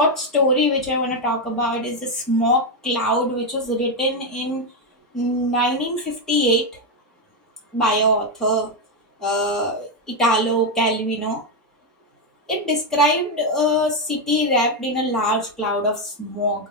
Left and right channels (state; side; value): normal; both; correlation 0.05